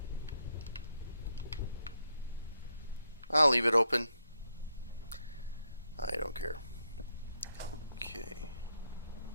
I'll leave it open. I don't care. Okay.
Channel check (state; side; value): inverted; both; correlation -0.77